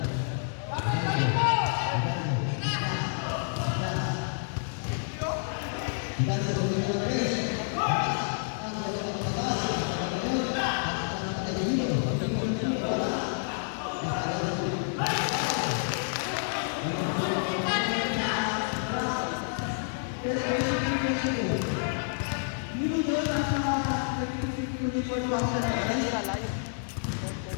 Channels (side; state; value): right; silent; digital silence